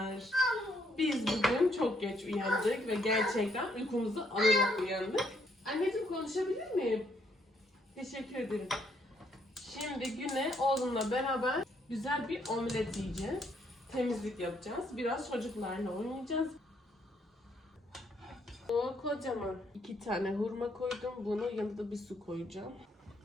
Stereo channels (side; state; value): both; normal; correlation 0.71